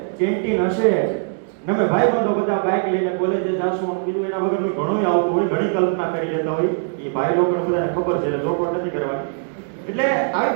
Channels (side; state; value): left; silent; digital silence